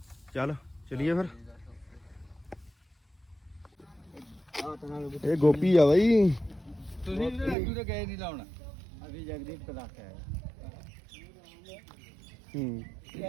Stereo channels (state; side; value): drops out; left; at 7.6 s